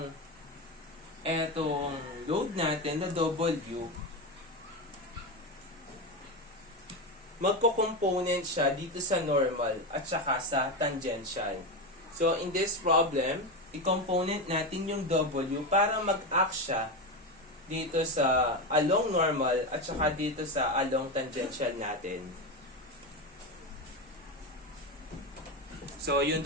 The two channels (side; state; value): both; normal; correlation 0.16